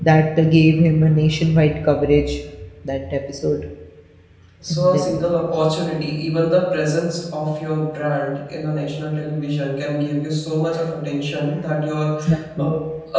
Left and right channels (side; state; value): both; identical; correlation 1.00